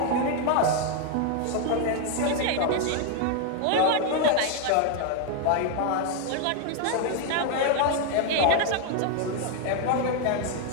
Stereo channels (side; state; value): both; different; correlation 0.00